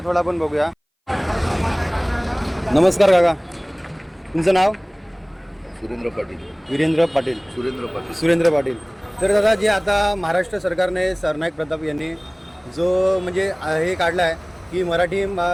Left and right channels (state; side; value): identical; both; correlation 1.00